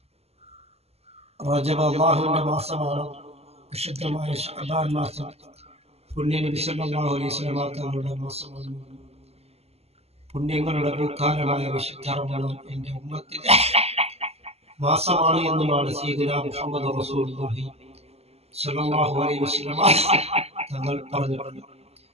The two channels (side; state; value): left; late; 0.30 ms